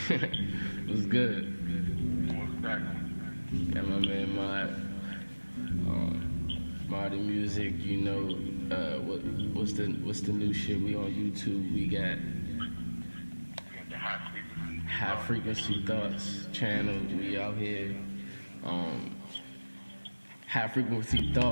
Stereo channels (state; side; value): inverted; both; correlation -1.00